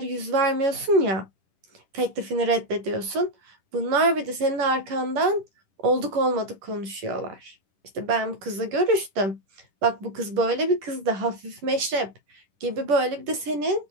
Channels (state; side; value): late; left; 10 ms